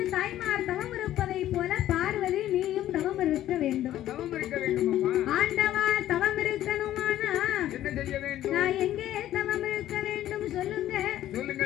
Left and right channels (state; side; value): quieter; right; 13.0 dB